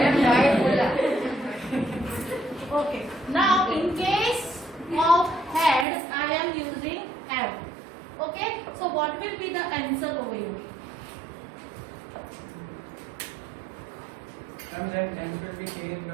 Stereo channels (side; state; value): left; drops out; at 5.9 s